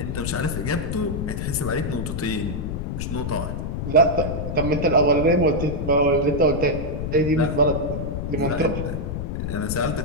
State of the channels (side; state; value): left; noise; rumble, 3 dB below the sound